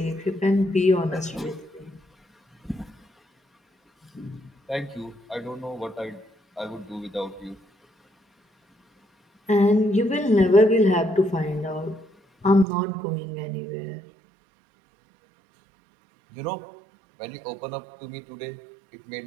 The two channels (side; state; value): left; drops out; at 12.7 s